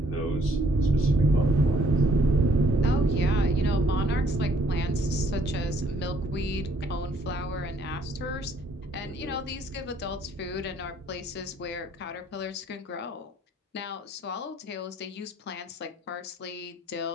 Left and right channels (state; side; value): normal; both; correlation 0.64